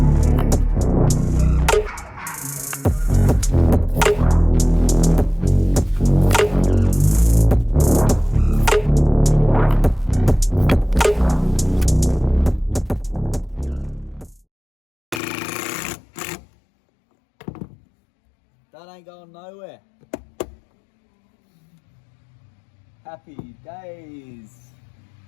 That ain't going nowhere. Happy days.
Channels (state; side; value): drops out; right; at 15.2 s